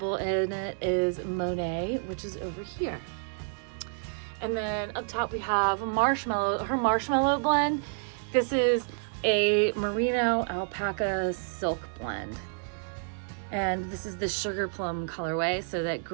in it is Monet, which is over here. And then up top we have Marshmallow, her Marshmallow blend. This is a Merino Alpaca silk blend. And this is the Sugar Plum colorway, so that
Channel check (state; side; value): silent; left; 58 dB below the other